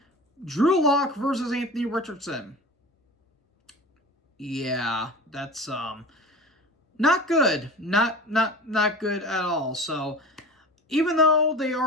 Drew Lock versus Anthony Richardson. Yeah, that's not good. Not good at all. So, even though they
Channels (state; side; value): normal; both; correlation 0.35